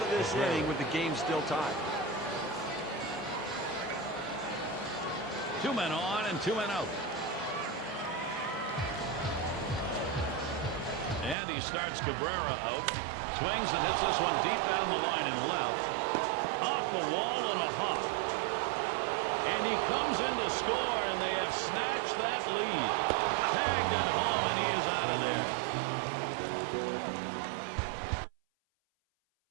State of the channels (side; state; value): left; drops out; at 11.4 s